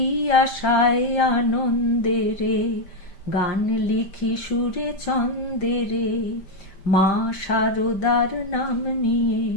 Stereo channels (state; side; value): late; right; 5.1 ms